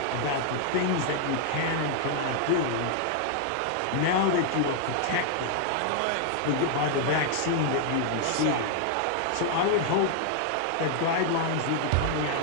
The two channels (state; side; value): different; both; correlation 0.00